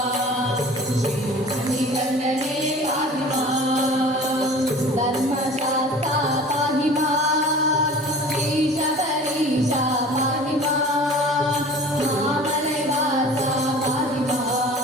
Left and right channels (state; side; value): normal; both; correlation 0.42